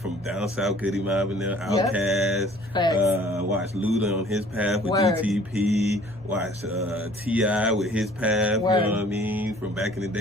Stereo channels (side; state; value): both; normal; correlation 0.53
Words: from down south, Goody Mob and them, Outkast. Watched Luda on his path with DTP. Watched T.I. with his path, you know what I mean? From back in the